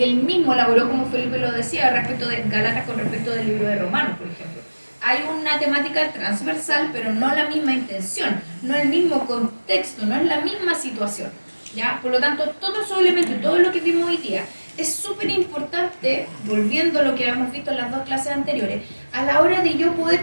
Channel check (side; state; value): both; inverted; correlation -1.00